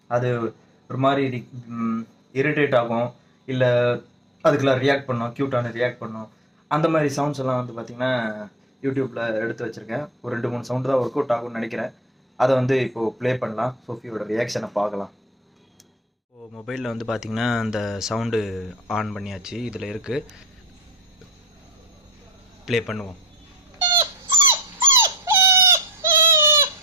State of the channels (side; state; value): both; normal; correlation 0.37